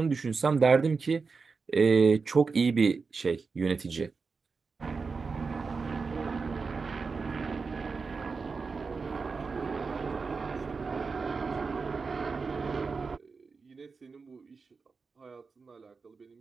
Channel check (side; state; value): left; quieter; 4.7 dB